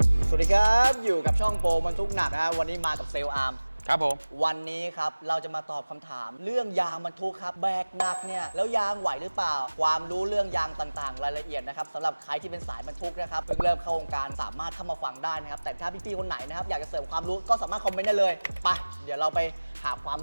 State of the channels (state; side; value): inverted; both; correlation -1.00